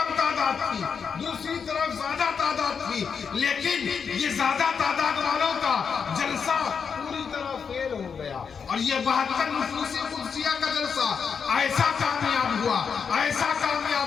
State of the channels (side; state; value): right; quieter; 6.3 dB